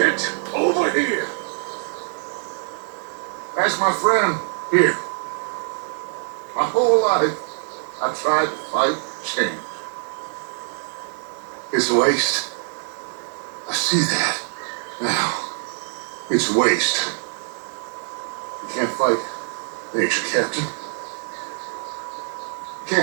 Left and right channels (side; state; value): left; silent; 62 dB below the other